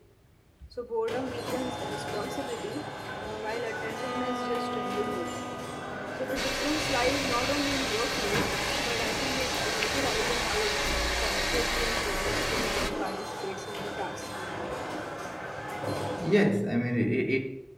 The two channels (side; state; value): both; identical; correlation 1.00